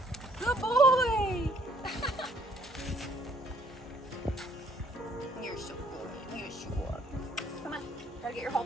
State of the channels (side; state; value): both; normal; correlation 0.63